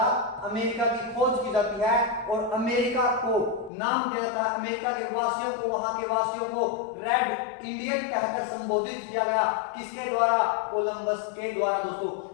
अमेरिका की खोज की जाती है और अमेरिका को नाम दिया जाता है। अमेरिका के वासियों को, वहां के वासियों को रेड इंडियन कहकर संबोधित किया गया। किसके द्वारा? कोलंबस के द्वारा दोस्तों।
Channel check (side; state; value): right; drops out; at 3.7 s